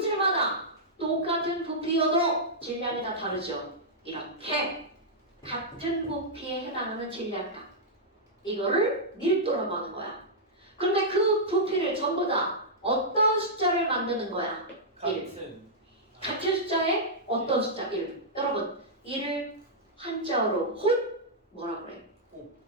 똑같은 부피여도 질량이 다 다르죠. 이렇게 같은 부피에 해당하는 질량값 이거를 밀도라고 하는 거야. 그런데 그 부피를 전부 다 어떤 숫자를 만드는 거야? 1. 같은 숫자에 어떤 숫자? 1. 여러분 1을 한자어로 뭐라 그래?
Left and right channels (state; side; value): normal; both; correlation -0.09